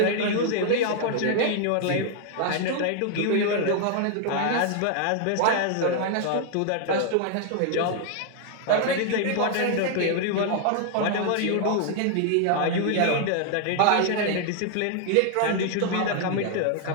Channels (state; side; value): different; both; correlation 0.00